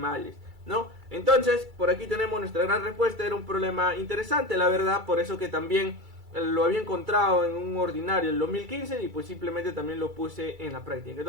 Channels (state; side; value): late; left; 2.3 ms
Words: ¿no? Entonces, por aquí tenemos nuestra gran respuesta. Era un problema interesante, la verdad, por eso que también lo había encontrado en un ordinario en 2015 y pues simplemente también lo puse en la práctica.